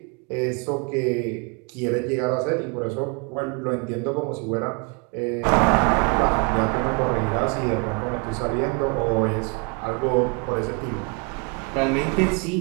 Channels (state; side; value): quieter; left; 33.8 dB